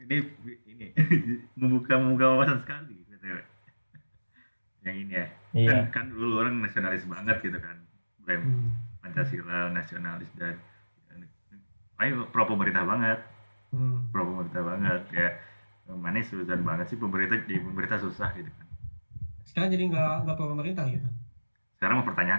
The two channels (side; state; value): both; inverted; correlation -1.00